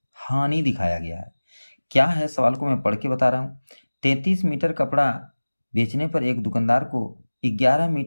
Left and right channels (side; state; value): both; inverted; correlation -1.00